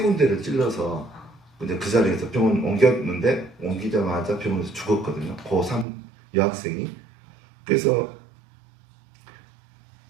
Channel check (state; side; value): drops out; left; at 5.9 s